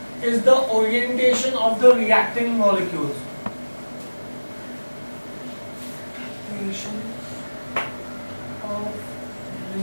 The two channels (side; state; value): both; inverted; correlation -1.00